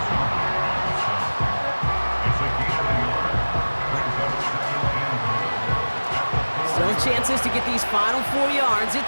Still chances to get these final 4 yards.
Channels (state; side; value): inverted; both; correlation -1.00